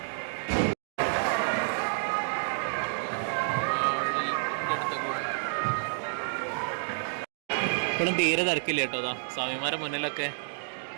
ഇപ്പോഴും തീരെ തിരക്കില്ല കേട്ടോ. അതാ സ്വാമിമാരുടെ മുന്നിലൊക്കെ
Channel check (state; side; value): silent; left; digital silence